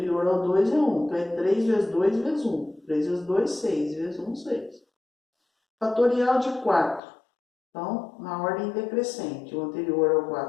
ao 2 é 1. Então, é 3 vezes 2 vezes 1. 3 vezes 2, 6. Vezes 1, 6. Fatorial de 4. Então, na ordem decrescente, o anterior ao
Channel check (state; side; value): drops out; right; at 7.0 s